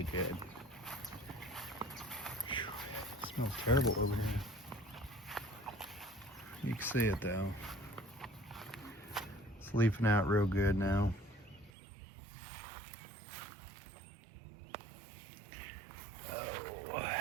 good. Whew, it smells terrible over here. You can see it though. It's leafing out real good now. Oh, you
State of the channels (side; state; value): left; drops out; at 11.7 s